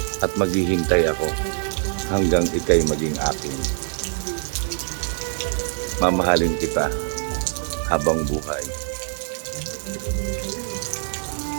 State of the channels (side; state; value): left; silent; digital silence